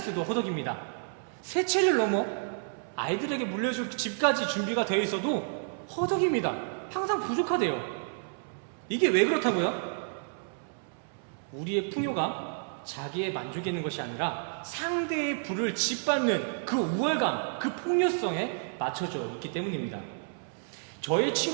허덕입니다. 세 채를 넘어 아이들에게 물려줄 집까지 준비가 되어 있어도 허덕입니다. 항상 부족하대요. 이게 왜 그렇다고요? 우리의 풍요가 자기의 만족이 있는 것이 아니라 상대의 부를 짓밟는 그 우월감, 그 폭력성에 맞춰져 있기 때문입니다. 저의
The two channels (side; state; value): left; silent; 58 dB below the other